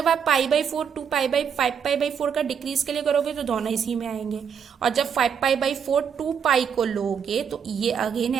आप π/4 5π/4 का डिक्रीज के लिए करोगे तो दोनों इसी में आएंगे, और जब 5π/4 2π को लोगे तो ये अगेन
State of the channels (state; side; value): quieter; left; 7.3 dB